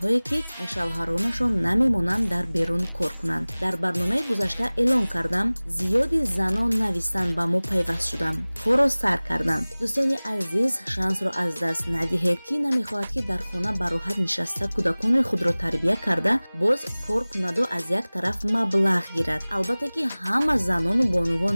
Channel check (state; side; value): inverted; both; correlation -1.00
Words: ки шавҳаронашон намемонанд дар берун кор кунанд. Дар барномаи гузашта эълон кардам, зиёди занон навистан ба мо пайваст шуданд, корро сар карданд. дӯстони азиз, шансро аз даст надиҳед. Ки намехоҳад ки дар хона ба роҳат нишаста кӯдакони худро тарбия карда, боз кор кунаду аз як тараф маблағ гирад. Албатта ки ҳама занону бонувон